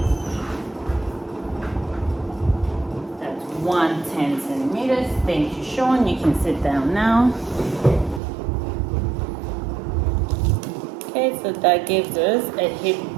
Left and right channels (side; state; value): left; drops out; at 8.2 s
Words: That's 110 centimeters. Thank you, Sean. You can sit down now. Okay, so that gives us a